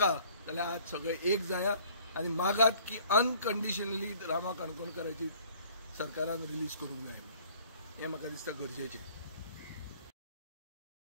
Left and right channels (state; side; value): inverted; both; correlation -0.55